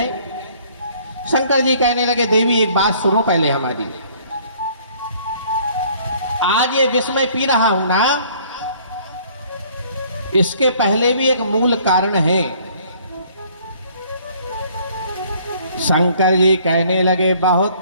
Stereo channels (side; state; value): both; inverted; correlation -0.58